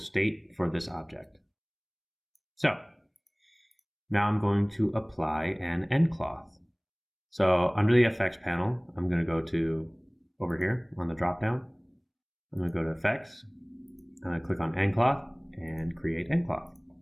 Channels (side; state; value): both; identical; correlation 1.00